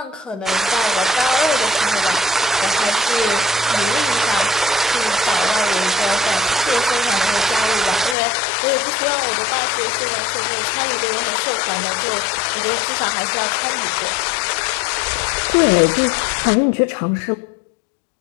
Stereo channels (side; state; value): right; drops out; at 8.2 s